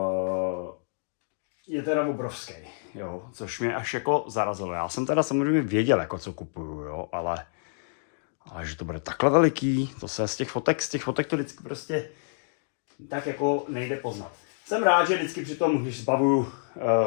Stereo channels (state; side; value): silent; right; digital silence